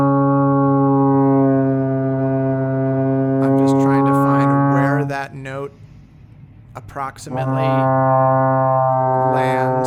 just trying to find where that note approximately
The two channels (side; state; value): both; identical; correlation 1.00